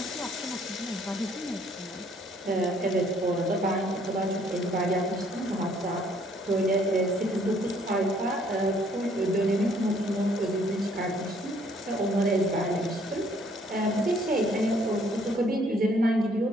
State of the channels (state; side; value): normal; both; correlation 0.63